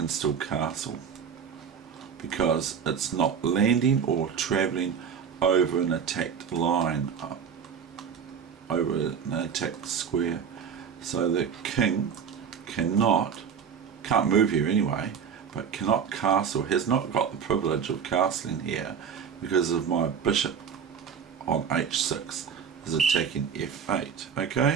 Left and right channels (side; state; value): left; quieter; 7.2 dB